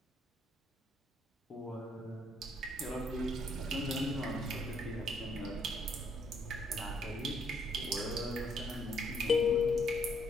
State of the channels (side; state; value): both; normal; correlation 0.70